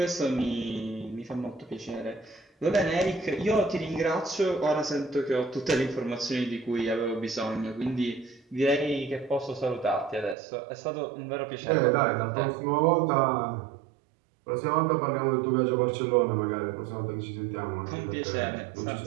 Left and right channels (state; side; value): drops out; left; at 10.4 s